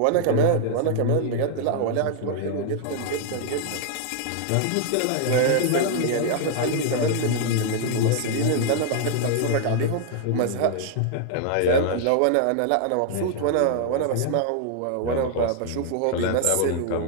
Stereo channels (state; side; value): different; both; correlation 0.00